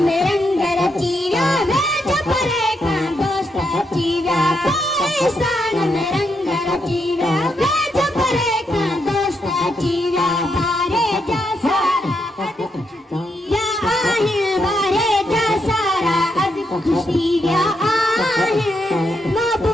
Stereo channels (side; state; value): both; normal; correlation 0.80